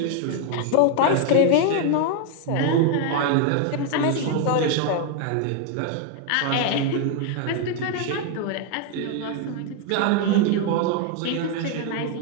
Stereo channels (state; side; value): different; both; correlation 0.01